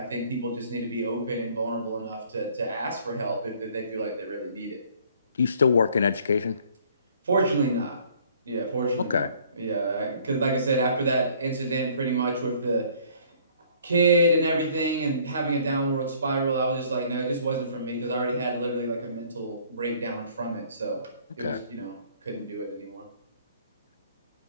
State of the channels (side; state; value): both; inverted; correlation -0.58